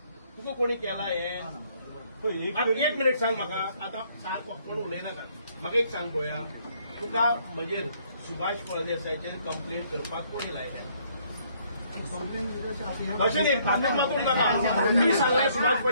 तुका कोणी केला हे. एक मिनिट सांग म्हाका. आता सारको कोण उलयनाका. म्हाका एक सांग पळोवया, तुका म्हणजे सुभाष फळदेसायचेर कंप्लेन करपाक कोणी लायल्या. अशें न्ही, फाटल्यान मागूंक नाका. मी सांगलें सुभाष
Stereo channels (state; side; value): inverted; both; correlation -0.66